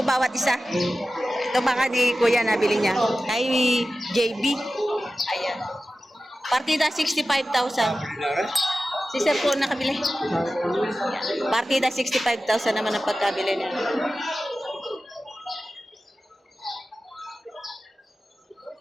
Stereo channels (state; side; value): normal; both; correlation 0.94